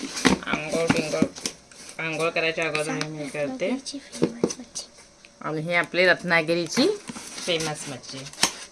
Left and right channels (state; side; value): identical; both; correlation 1.00